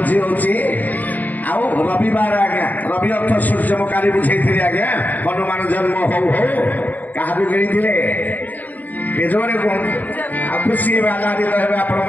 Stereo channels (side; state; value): right; late; 0.082 ms